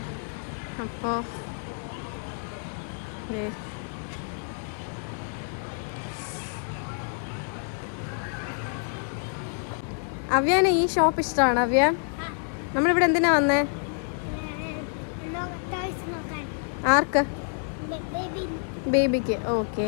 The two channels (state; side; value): silent; right; 59 dB below the other